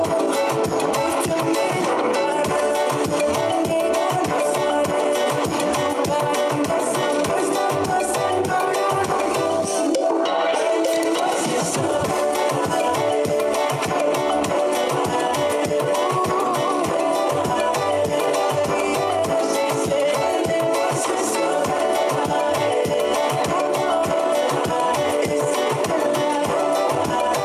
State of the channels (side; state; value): both; identical; correlation 1.00